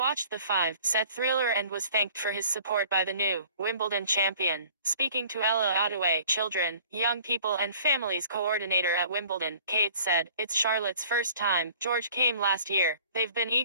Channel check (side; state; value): both; inverted; correlation -0.51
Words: the 5-set thriller and was thanked for his support by the new Wimbledon champion. Speaking to Ella Ottaway, children, young people and families coordinator at Wimbledon, Kate said, "It's Charlotte's first time. George came last year. They've been